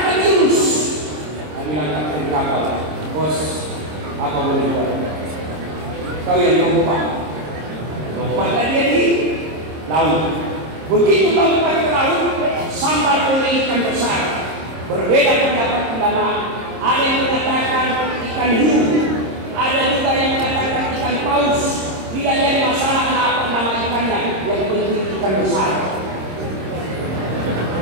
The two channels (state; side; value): late; left; 26 ms